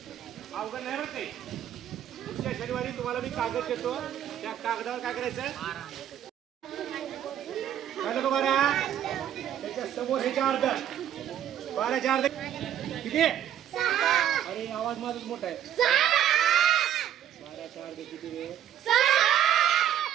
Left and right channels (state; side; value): quieter; left; 10.4 dB